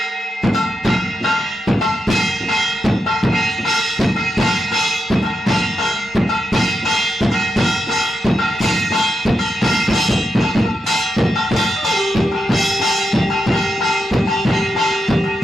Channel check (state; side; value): normal; both; correlation 0.86